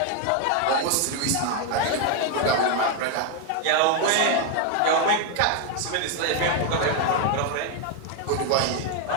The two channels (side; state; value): both; different; correlation 0.01